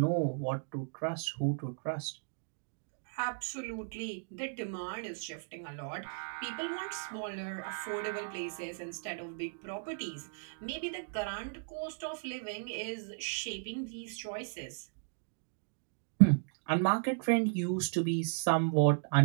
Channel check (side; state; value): left; silent; digital silence